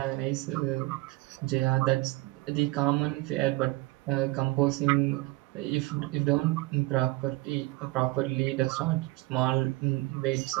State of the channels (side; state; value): left; quieter; 20.6 dB